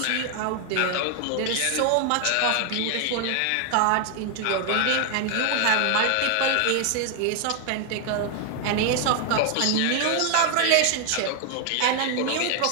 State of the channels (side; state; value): both; different; correlation 0.00